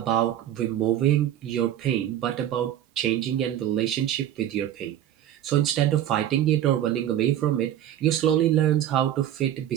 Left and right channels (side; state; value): left; quieter; 11.4 dB